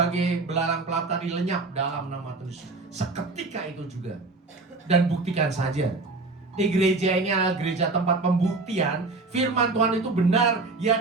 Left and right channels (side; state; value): left; quieter; 3.6 dB